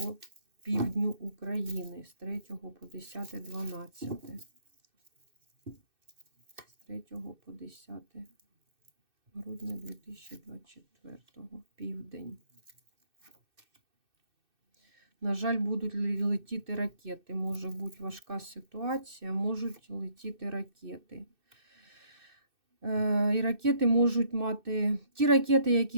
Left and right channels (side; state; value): left; late; 2.6 ms